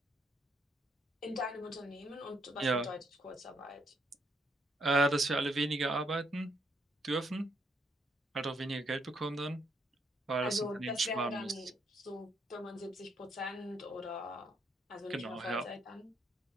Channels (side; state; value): both; normal; correlation 0.73